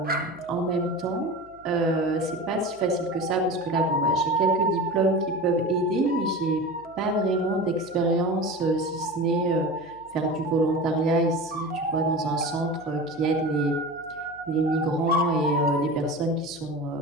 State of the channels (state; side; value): noise; right; hum, 28 dB below the sound